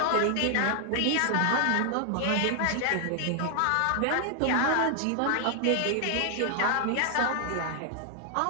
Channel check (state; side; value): different; both; correlation 0.00